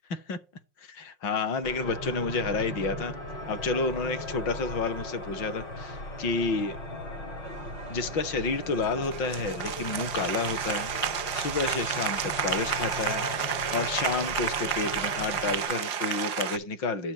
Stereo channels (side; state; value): right; late; 5.6 ms